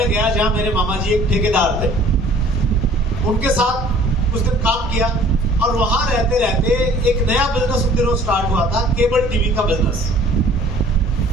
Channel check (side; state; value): both; normal; correlation 0.52